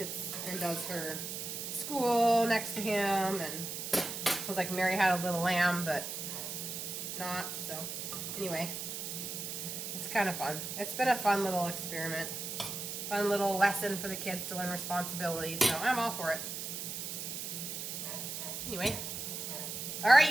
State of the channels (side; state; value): right; noise; hiss, 5 dB below the sound